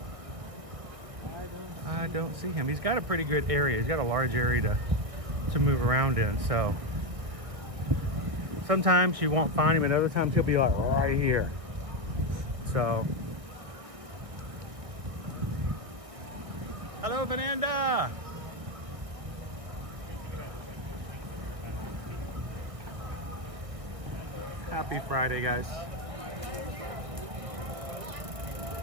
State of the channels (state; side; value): late; left; 1.6 ms